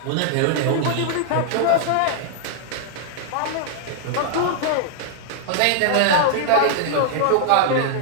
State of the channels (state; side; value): different; both; correlation 0.00